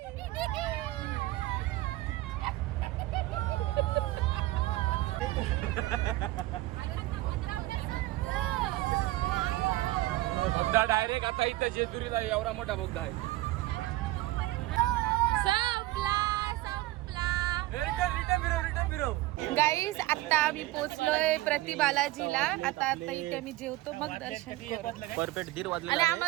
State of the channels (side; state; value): left; quieter; 17.9 dB